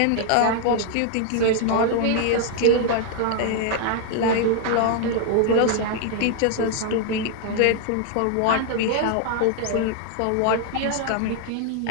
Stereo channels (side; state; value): both; different; correlation 0.00